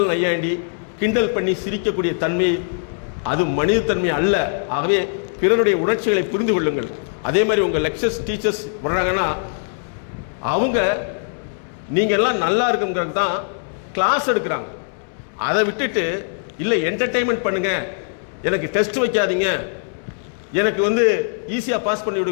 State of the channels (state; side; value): silent; right; 64 dB below the other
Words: நையாண்டி கிண்டல் பண்ணி சிரிக்கக்கூடிய தன்மை அது மனித தன்மை அல்ல. ஆகவே பிறருடைய உணர்ச்சிகளை புரிந்து கொள்ளுங்கள். அதே மாதிரி உங்கள் லெக்சர்ஸ் டீச்சர்ஸ் வர்றாங்கன்னா அவங்க நீங்கள் எல்லாம் நல்லா இருக்குங்கிறது தான் கிளாஸ் எடுக்கிறாங்க. அதை விட்டுட்டு இல்லை என்டர்டெயின்மெண்ட் பண்ணுங்க, எனக்கு டெஸ்ட் வைக்காதீங்க, எனக்கு வந்து ஈஸியாக பாஸ் பண்ணி